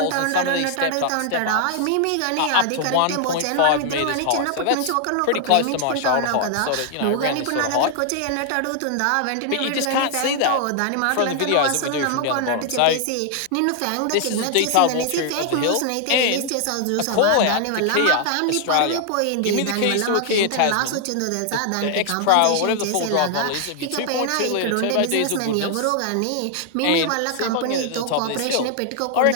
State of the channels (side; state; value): both; different; correlation 0.00